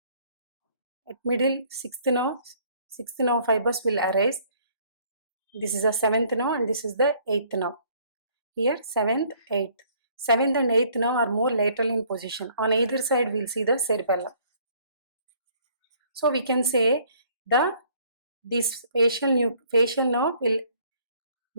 at middle sixth nerve fibers will arise. This is the seventh nerve and this is the eighth nerve. Here seventh, eighth. Seventh and eighth nerve are more lateral in position. On either side we'll see the cerebellum. So we can say this facial nerve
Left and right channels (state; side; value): inverted; both; correlation -0.61